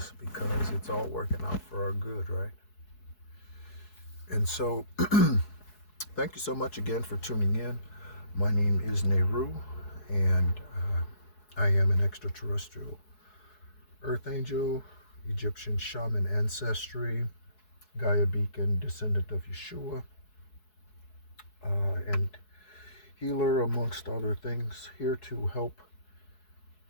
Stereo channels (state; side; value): late; right; 4.7 ms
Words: because it's all working out for our good, right? And so, thank you so much again for tuning in. My name is Nehru, and I am an extraterrestrial Earth Angel, Egyptian Shaman ancestry, Gaia Beacon descendant of Yeshua, and healer amongst other things, here to help